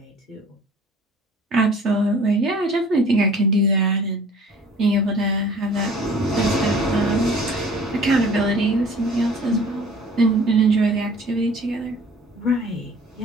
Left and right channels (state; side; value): normal; both; correlation 0.49